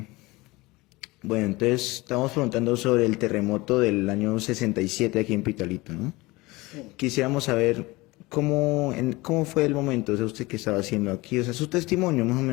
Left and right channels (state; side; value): quieter; right; 21.9 dB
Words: Bueno, entonces estamos preguntando sobre el terremoto del año 67 aquí en Pitalito, ¿no? Sí. Quisiéramos saber cómo fue el momento, o sea, usted qué estaba haciendo aquí, o sea, su testimonio, más o